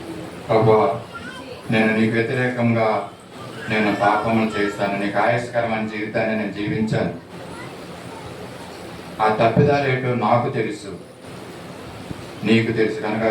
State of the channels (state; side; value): identical; both; correlation 1.00